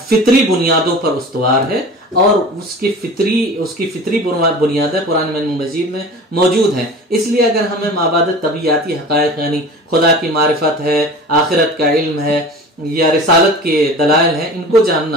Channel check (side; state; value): both; normal; correlation 0.38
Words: फितरी बुनियादों पर उस्तवार है और उसकी फितरी बुनियादें कुरान मजीद में मौजूद हैं। इसलिए अगर हमें माबाद तबियाती हक़ाइक़ यानी खुदा की मारिफत है, आखिरत का इल्म है या रिसालत के दलाइल हैं, इनको